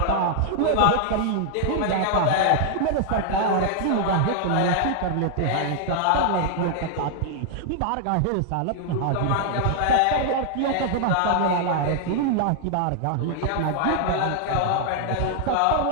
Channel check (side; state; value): both; different; correlation 0.00